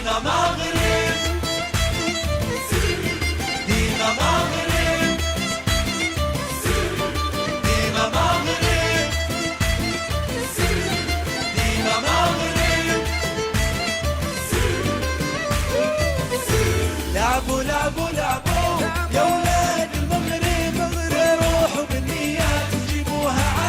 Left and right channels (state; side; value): identical; both; correlation 1.00